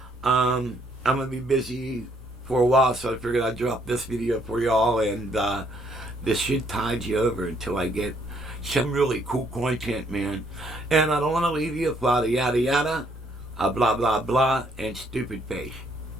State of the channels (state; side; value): normal; both; correlation 0.68